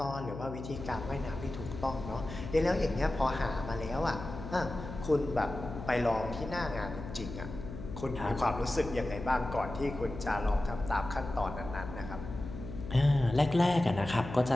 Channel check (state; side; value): noise; left; hum, 10 dB below the sound